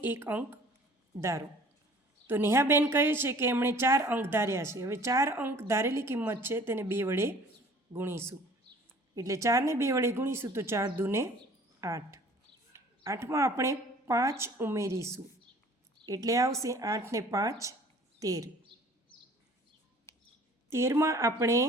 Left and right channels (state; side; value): normal; both; correlation 0.51